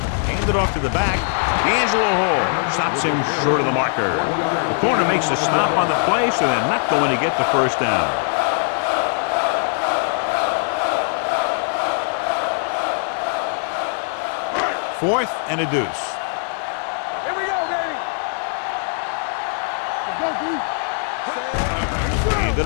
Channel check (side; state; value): right; silent; 65 dB below the other